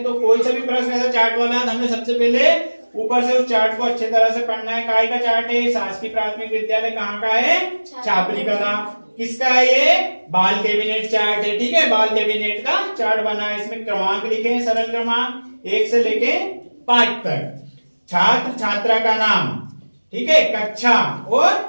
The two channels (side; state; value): both; inverted; correlation -1.00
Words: तो कोई सा भी प्रश्न ऐसा चार्ट वाला है तो हमें सबसे पहले ऊपर से उस चार्ट को अच्छे तरह से पढ़ना है। काय का चार्ट है? शासकीय प्राथमिक विद्यालय कहाँ का है? छापरी कला। किसका है ये? बाल कैबिनेट चार्ट है, ठीक है। बाल कैबिनेट का चार्ट बना है। इसमें क्रमांक लिखे हैं, सरल क्रमांक 1 से लेके 5 तक। छात्र छात्रा का नाम, ठीक है, कक्षा और